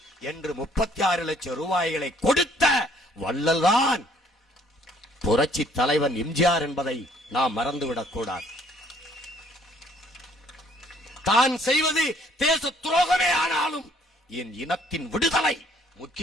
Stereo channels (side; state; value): both; normal; correlation 0.62